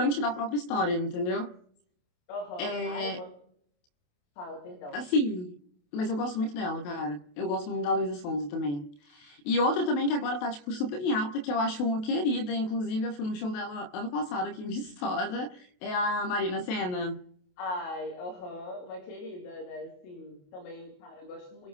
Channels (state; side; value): late; right; 28 ms